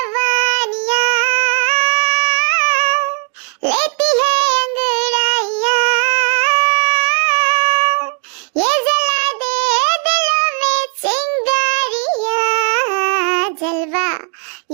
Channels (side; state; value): left; quieter; 39.7 dB